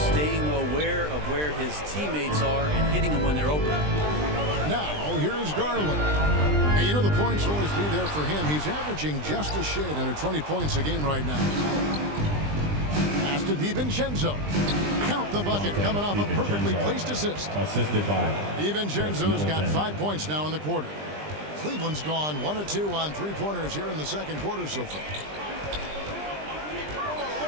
staying aware of where his teammates are and hitting them when they're open. Now, here's Garland. And you know the points will always be there for him. He's averaging just a shade under 20 points a game right now. Pass to DiVincenzo. Count the bucket coming off a perfectly placed assist. Assisted by DiVincenzo's got 5 points now in the quarter. Cleveland's gone 1 of 2 on 3-pointers here in the second quarter so far.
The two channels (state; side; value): late; left; 20 ms